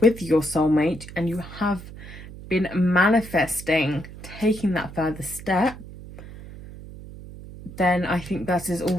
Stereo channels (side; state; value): right; noise; hum, 15 dB below the sound